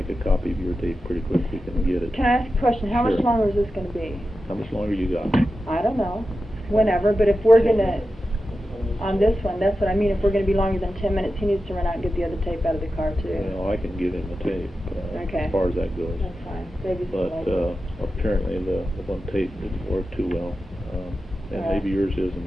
a copy of your tape pretty quick, we can get it. Can I ask a question? How much longer is this going to be? How much longer you got? I don't know. Whenever, but if we're going to, on this one, that's what I mean. If we're going to be longer than 10 minutes, he needs to run out and get the other tape out of the car, too. Well, I can give him the tape as far as that goes. That's fine. But apparently the one tape didn't work too well. And maybe yours is and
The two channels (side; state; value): both; normal; correlation 0.91